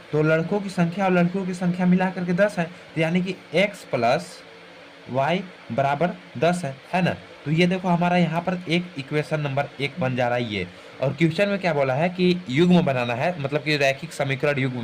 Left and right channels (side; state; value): both; identical; correlation 1.00